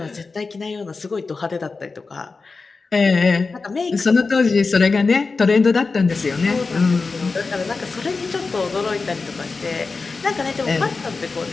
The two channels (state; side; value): quieter; right; 4.2 dB